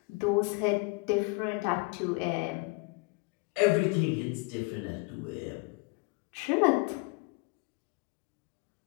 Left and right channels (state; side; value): quieter; right; 29.0 dB